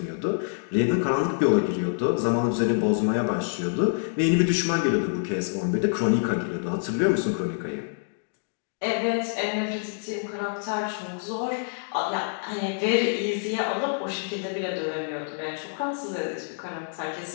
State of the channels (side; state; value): right; silent; digital silence